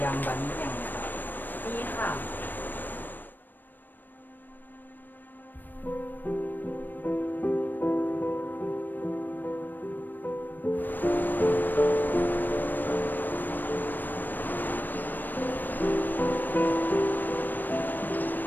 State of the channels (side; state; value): right; late; 0.090 ms